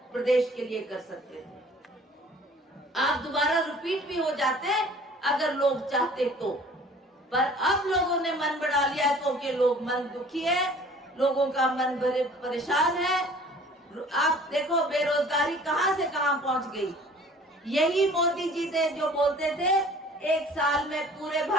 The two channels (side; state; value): both; normal; correlation 0.50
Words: प्रदेश के लिए कर सकते थे। आप दोबारा रिपीट भी हो जाते अगर लोग चाहते तो। पर अब लोगों ने मन बना लिया है क्योंकि लोग मन दुखी है, लोगों का मन बड़े परेशान है। आप देखो बेरोजगारी कहां से कहां पहुंच गई। यही मोदी जी थे जो बोलते थे एक साल में पूरे